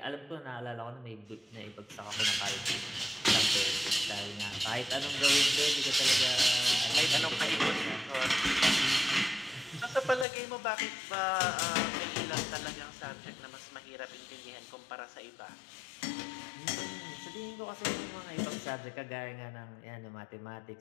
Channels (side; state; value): right; drops out; at 10.2 s